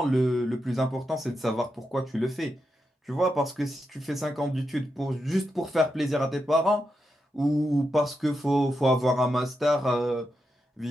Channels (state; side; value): normal; both; correlation 0.86